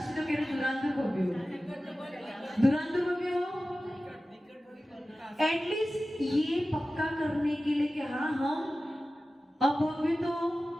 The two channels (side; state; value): both; normal; correlation 0.95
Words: तो कह रहे दुरांदूर भव्य हो, दुरांदूर भव्य हो। एटलीस्ट ये पक्का करने के लिए कि हाँ हम अभव्य तो